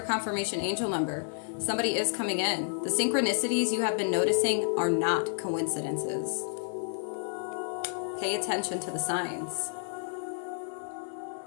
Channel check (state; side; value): silent; right; digital silence